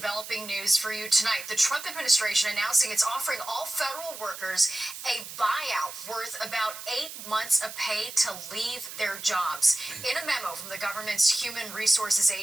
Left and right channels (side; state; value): right; noise; hiss, 11 dB below the sound